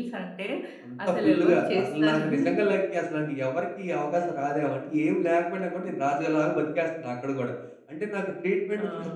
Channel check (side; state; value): both; identical; correlation 1.00